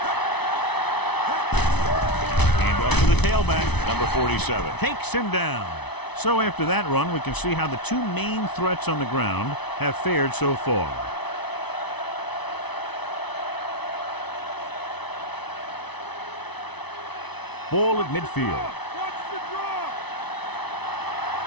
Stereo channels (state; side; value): late; right; 0.99 ms